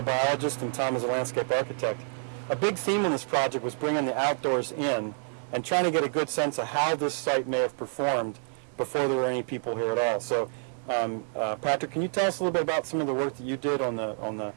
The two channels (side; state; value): left; silent; 59 dB below the other